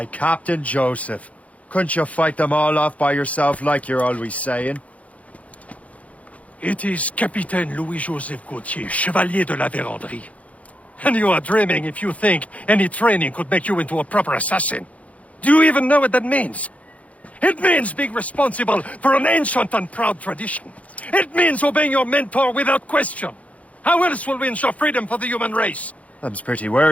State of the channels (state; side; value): late; right; 0.066 ms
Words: Captain Joseph. Couldn't you fight them all off by yourself like you're always saying? It is Capitaine Louis-Joseph Gauthier, Chevalier de la Vérendrye. And you are dreaming if you think any training could make you into a proper assassin. Do you even know what that means? It means being responsible for an ancient and proud tradition. It means obeying your mentor without question. How else will we ensure freedom for the human race? Them's pretty